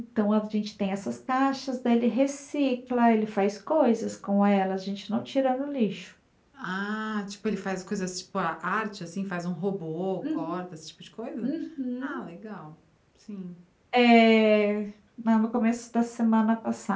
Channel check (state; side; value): identical; both; correlation 1.00